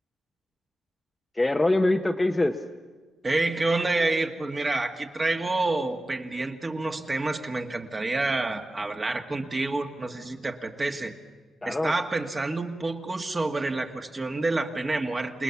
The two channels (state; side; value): normal; both; correlation 0.94